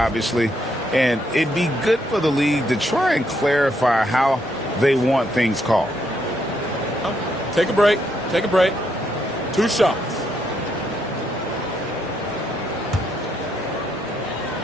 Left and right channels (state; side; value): normal; both; correlation 0.76